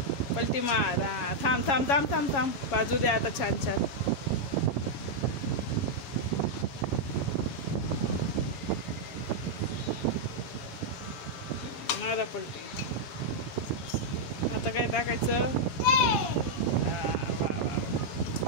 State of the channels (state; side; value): late; right; 7.3 ms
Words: हा, थांब. बाजू दे आता. छान. मारा पलटी. आता काय टाकायचं? वा.